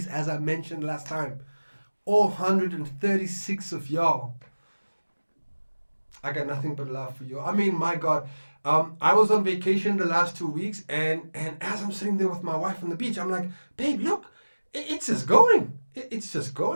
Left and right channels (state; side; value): inverted; both; correlation -1.00